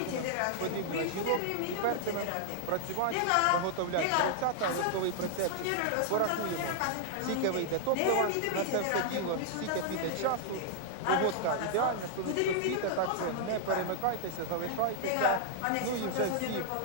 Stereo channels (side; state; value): both; different; correlation -0.01